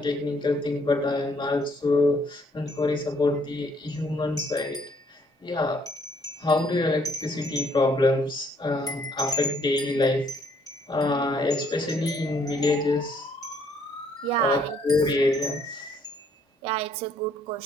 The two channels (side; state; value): both; normal; correlation 0.66